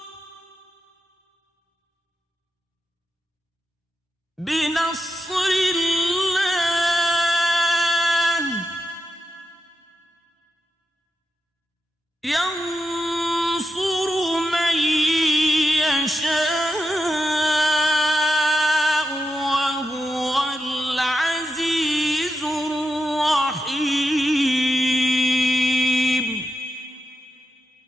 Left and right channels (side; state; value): both; normal; correlation 0.87